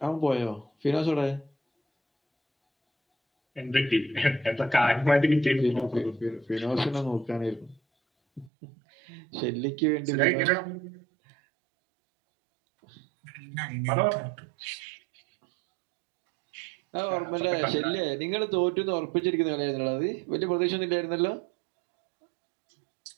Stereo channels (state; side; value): drops out; left; at 8.5 s